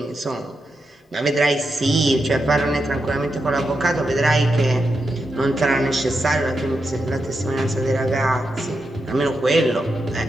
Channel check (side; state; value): both; normal; correlation 0.86